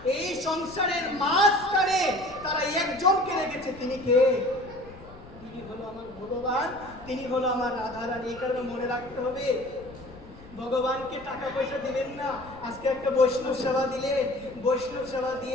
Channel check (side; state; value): left; noise; rumble, 19 dB below the sound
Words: এই সংসারের মাঝখানে তারা একজনকে রেখেছে। তিনি কে? তিনি হলো আমার ভগবান, তিনি হলো আমার রাধারানী। এই কারণে মনে রাখতে হবে, ভগবানকে টাকা পয়সা দিলেন না, আজকে একটা বৈষ্ণব সেবা দিলেন, বৈষ্ণব সেবা